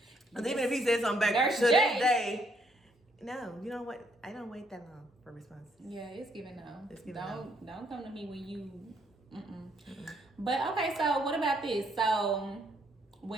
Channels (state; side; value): normal; both; correlation 0.70